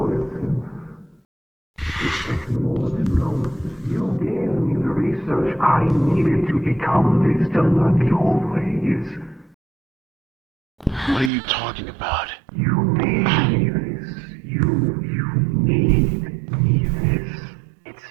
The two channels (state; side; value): drops out; left; at 11.3 s